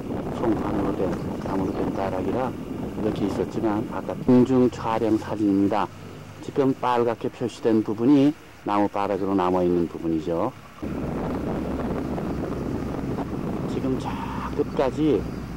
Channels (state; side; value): identical; both; correlation 1.00